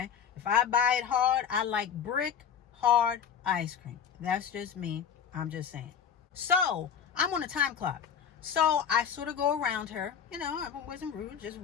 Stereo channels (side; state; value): right; quieter; 7.8 dB